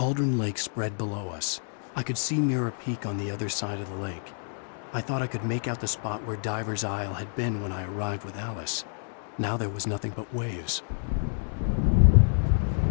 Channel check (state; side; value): silent; right; 59 dB below the other